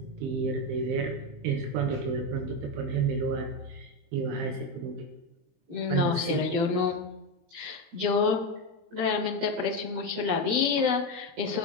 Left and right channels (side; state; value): left; late; 20 ms